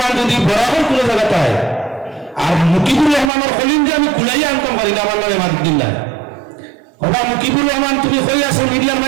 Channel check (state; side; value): drops out; left; at 3.3 s